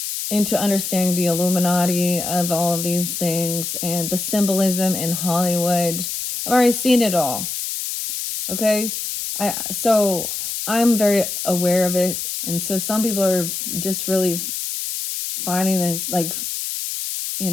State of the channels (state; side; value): noise; left; hiss, 4 dB below the sound